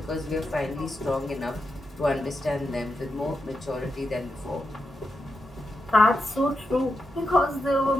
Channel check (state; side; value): normal; both; correlation 0.87